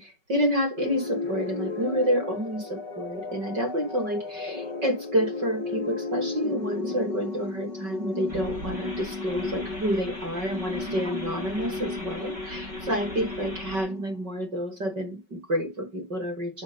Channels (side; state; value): left; late; 5.3 ms